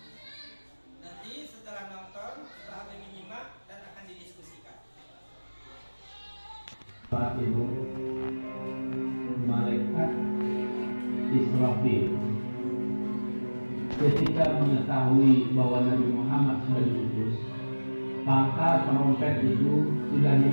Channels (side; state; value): both; inverted; correlation -1.00